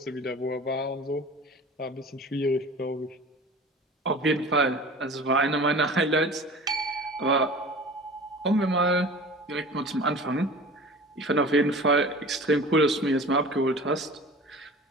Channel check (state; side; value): normal; both; correlation 0.39